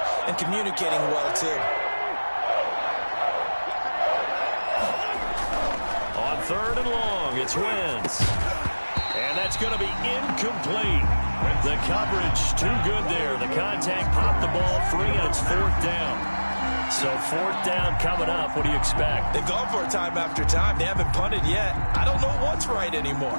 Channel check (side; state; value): both; inverted; correlation -1.00